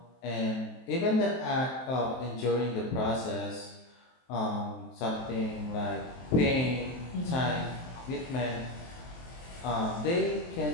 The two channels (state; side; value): late; right; 23 ms